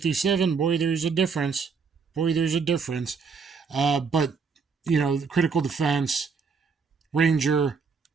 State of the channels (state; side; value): quieter; left; 5.3 dB